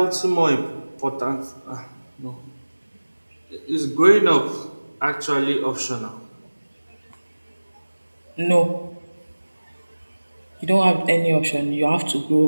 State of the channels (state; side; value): inverted; both; correlation -1.00